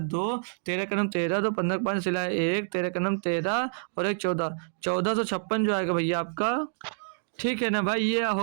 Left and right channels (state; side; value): silent; left; digital silence